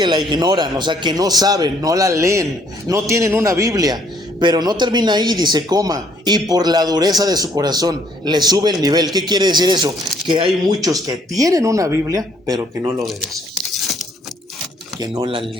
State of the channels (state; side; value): normal; both; correlation 0.65